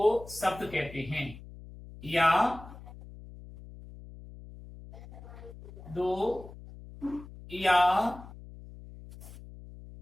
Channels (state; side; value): noise; left; hum, 16 dB below the sound